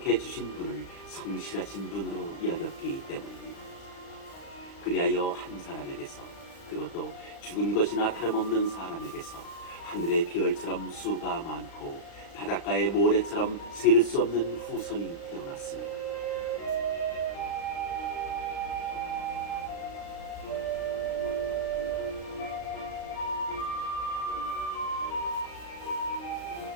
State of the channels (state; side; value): late; right; 36 ms